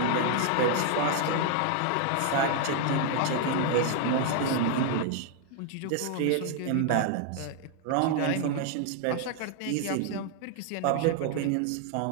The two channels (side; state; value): both; different; correlation 0.00